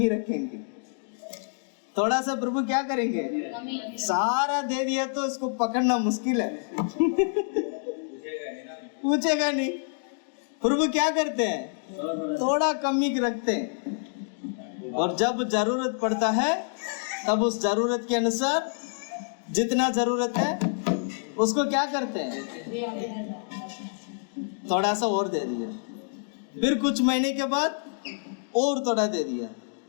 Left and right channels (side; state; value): right; silent; digital silence